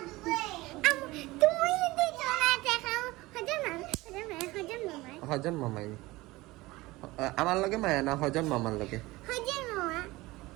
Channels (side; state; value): left; quieter; 20.1 dB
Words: তুমি যদি চলে দেখাও হজন মামাই আমার লগে মায়া না হজন মামার লগে